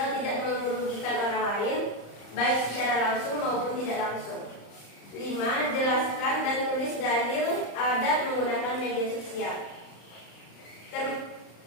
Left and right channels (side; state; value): right; late; 35 ms